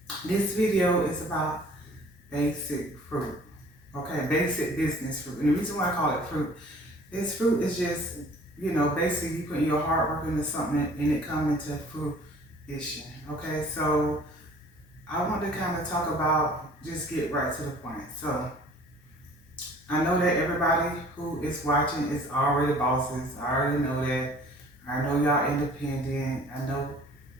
this video is about basic fruit, okay, basic business fruit. And the reason why I call it fruit is just, basically you put your hard work into something and it comes into fruition, okay? So I want to kind of talk about, just get right to the point. So I know that everybody who is watching is already bosses. I already know that. I know y'all independent. I know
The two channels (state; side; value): normal; both; correlation 0.51